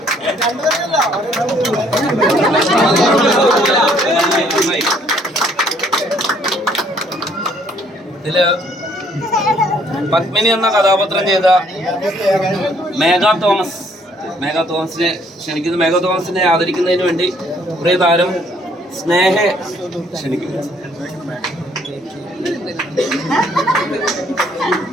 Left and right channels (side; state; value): both; normal; correlation 0.64